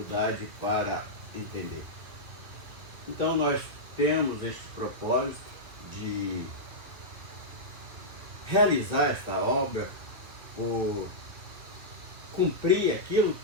para entender. Então nós temos este propósito de realizar esta obra, por cumprir aquilo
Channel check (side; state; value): left; late; 2.4 ms